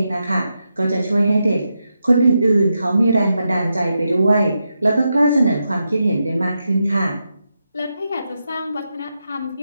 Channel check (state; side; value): inverted; both; correlation -0.86